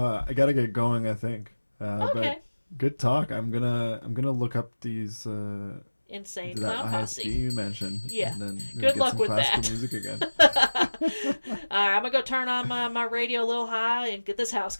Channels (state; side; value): inverted; both; correlation -1.00